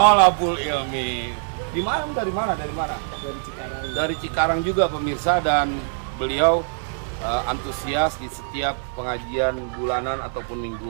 Ilmi. Di mana? Dari mana? Dari Cikarang. Dari Cikarang juga pemirsa, dan beliau antusias di setiap pengajian bulanan ataupun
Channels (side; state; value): left; silent; 63 dB below the other